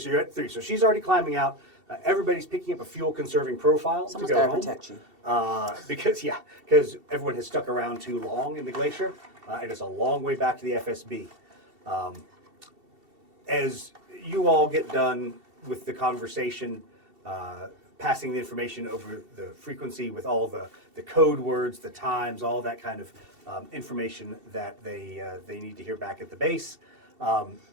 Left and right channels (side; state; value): left; late; 2.7 ms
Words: you're at 3. So she's already climbing out. Everybody's picking up a fuel-conserving profile Someone's to go gotta home. protect you. Because everyone has stuck around too long in the glacier, and it's a long way back to the FSB. As you all get done with the conversation, passing the information over the frequency with all the code words, the times, all that kind of information that they need to hear back at the base,